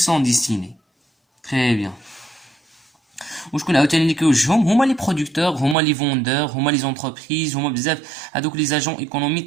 سون ديستيني. تري بيان. وشكون عاوتاني اللي كيوجههم؟ هما لي برودكتور، هما لي فوندور، هما لي زونتربريز، هما بزاف هادوك لي زاجون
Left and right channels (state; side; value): drops out; left; at 5.8 s